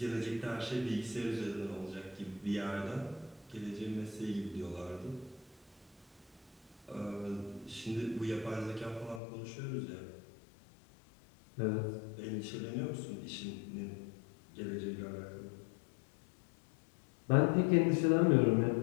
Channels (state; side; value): drops out; right; at 9.2 s